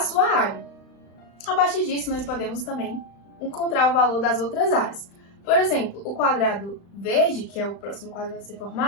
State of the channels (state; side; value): late; right; 35 ms